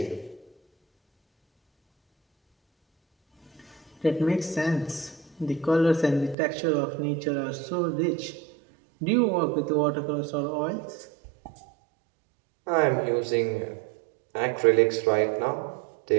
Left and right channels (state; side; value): drops out; left; at 6.4 s